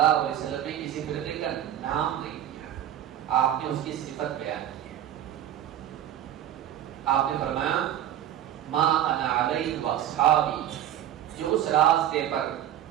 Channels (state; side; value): quieter; left; 11.3 dB